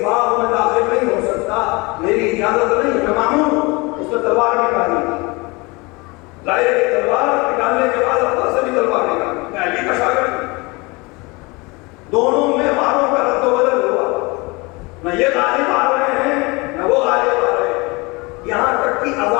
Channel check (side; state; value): right; quieter; 26.1 dB